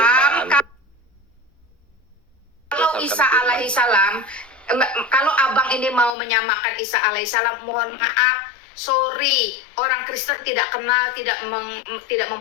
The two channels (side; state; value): right; drops out; at 6.2 s